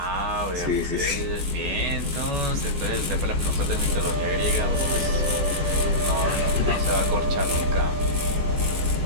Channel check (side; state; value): left; late; 14 ms